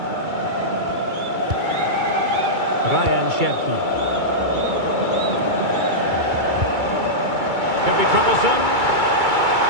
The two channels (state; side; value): late; left; 2.3 ms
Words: Ryan Cherki. Could be troublesome.